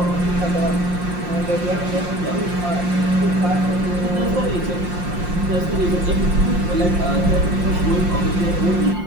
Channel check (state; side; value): late; left; 5.7 ms